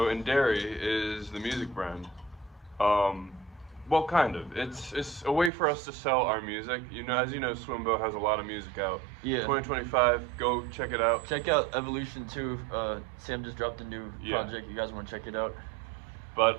Dairy is the music brand. Well, kind of. It's a way for us to sell our music. You know, as you know, Swimbo has a lot of music out. Yeah. 2025, go check it out. Check out Evolution 2. Sam just dropped a new project. You guys want to check it out? But,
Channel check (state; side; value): drops out; left; at 5.5 s